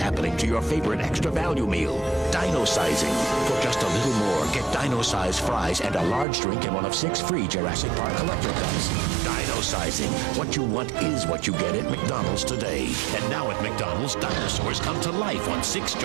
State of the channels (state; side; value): drops out; left; at 6.2 s